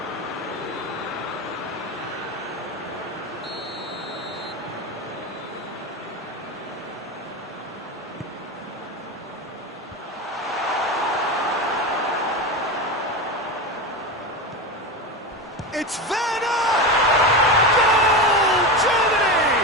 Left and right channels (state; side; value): normal; both; correlation 0.20